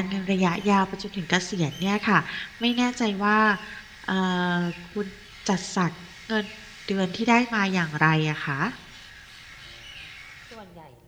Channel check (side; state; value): both; identical; correlation 1.00